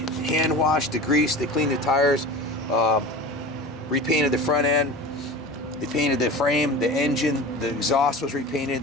hand washed, degreased. They cleaned the tires, repainted the front end. They painted the frame, the engine, the exhaust was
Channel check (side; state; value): both; normal; correlation 0.33